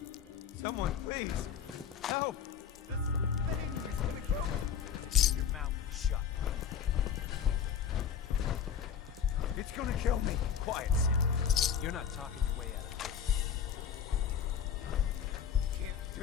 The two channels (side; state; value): right; quieter; 7.8 dB